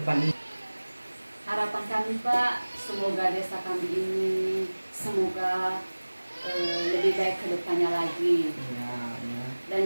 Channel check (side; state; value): both; inverted; correlation -1.00